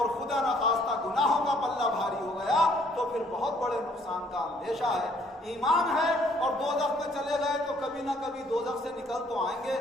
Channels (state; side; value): normal; both; correlation 0.63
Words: خدا نخواستہ گناہوں کا پلہ بھاری ہو گیا تو پھر بہت بڑے نقصان کا اندیشہ ہے۔ ایمان ہے اور دوزخ میں چلے گئے تو کبھی نہ کبھی دوزخ سے نکل تو آئیں گے،